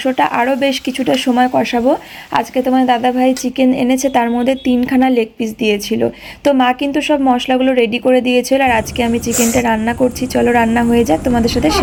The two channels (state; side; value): identical; both; correlation 1.00